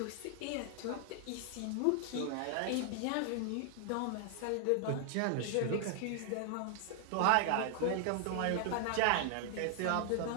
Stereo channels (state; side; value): different; both; correlation 0.00